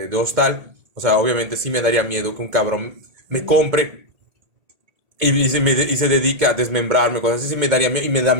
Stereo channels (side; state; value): left; late; 1.8 ms